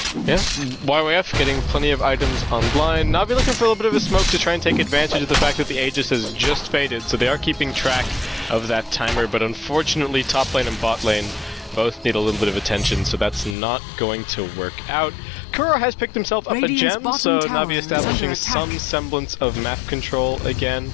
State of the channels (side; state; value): right; drops out; at 13.6 s